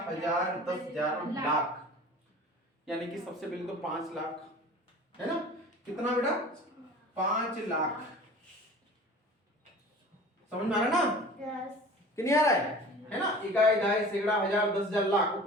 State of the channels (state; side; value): normal; both; correlation 0.42